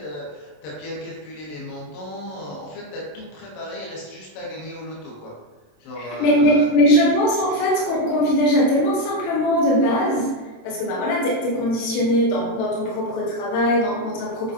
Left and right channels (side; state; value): right; late; 27 ms